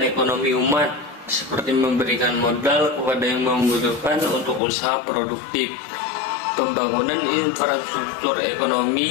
umat, seperti memberikan modal kepada yang membutuhkan untuk usaha produktif, pembangunan infrastruktur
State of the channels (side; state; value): right; drops out; at 4.6 s